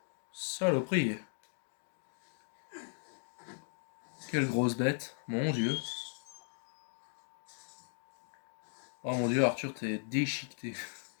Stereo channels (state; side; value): silent; right; digital silence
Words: Saloperie. Quelle grosse bête. Mon Dieu. Oh mon Dieu, Arthur, t'es déchiqueté.